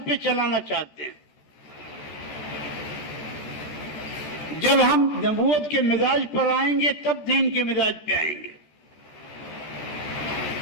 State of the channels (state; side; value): late; right; 14 ms